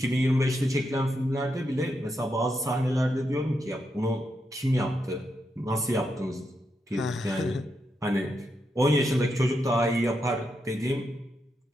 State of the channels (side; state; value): both; normal; correlation 0.83